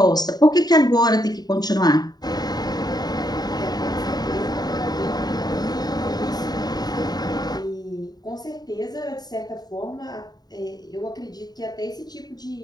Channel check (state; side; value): late; right; 0.19 ms